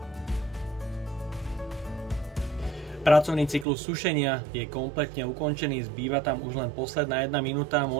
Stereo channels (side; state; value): left; drops out; at 3.7 s